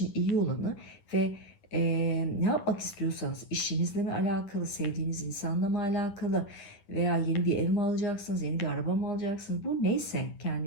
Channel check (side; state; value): right; late; 10 ms